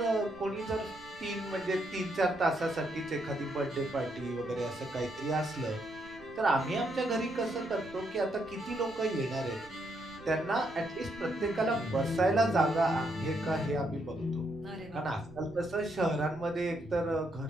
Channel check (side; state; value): right; noise; rumble, 21 dB below the sound